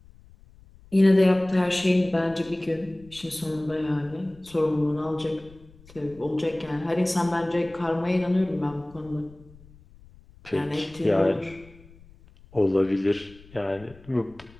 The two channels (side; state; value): left; noise; rumble, 24 dB below the sound